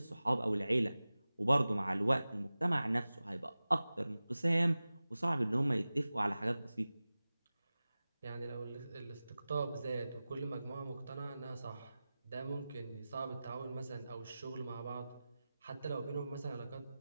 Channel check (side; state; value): both; inverted; correlation -0.96